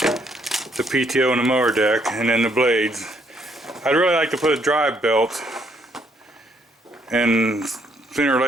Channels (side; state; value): both; normal; correlation 0.70